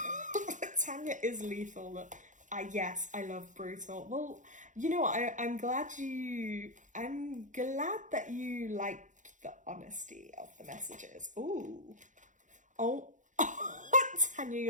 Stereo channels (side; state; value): left; late; 0.36 ms